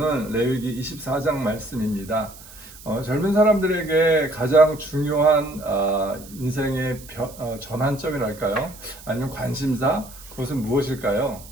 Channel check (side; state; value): right; noise; hiss, 19 dB below the sound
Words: 레위기 24장 말씀입니다. 젊은 사람들에게 가장 중요한 인생의 전환점이랄까요? 아니면 관심사? 그것은 무엇일까요?